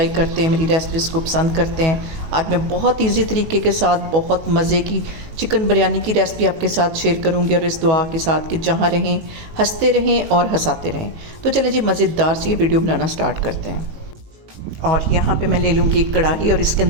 करते हैं, मेरी रेसिपीज़ को पसंद करते हैं। आज मैं बहुत ईजी तरीके के साथ बहुत मज़े की चिकन बिरयानी की रेसिपी आपके साथ शेयर करूँगी, और इस दुआ के साथ कि जहाँ रहें हंसते रहें और हंसाते रहें। तो चलें जी, मज़ेदार सी ये वीडियो बनाना स्टार्ट करते हैं। और यहाँ पे मैं ले लूँगी एक कढ़ाई और इसके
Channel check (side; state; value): left; late; 19 ms